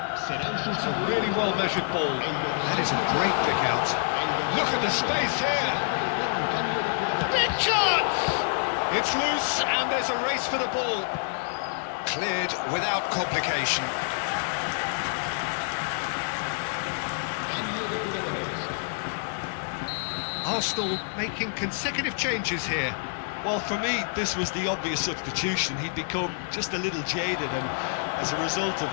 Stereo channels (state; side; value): silent; right; 60 dB below the other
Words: Serán It's a sustituidos. really well-measured ball. That is a great pick out. Look at the space here. Big chance! It's loose, and there's a race for the ball. Cleared without complication. Arsenal making consecutive changes here. Well, for me, this was the obvious substitution. He'd become just a little jaded, and as a result of